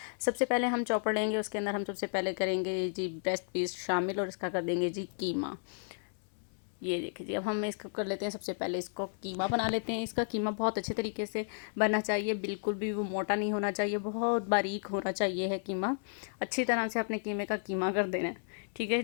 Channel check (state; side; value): silent; right; 56 dB below the other